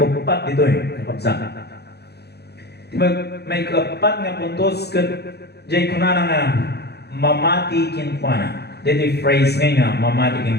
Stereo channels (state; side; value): late; right; 0.48 ms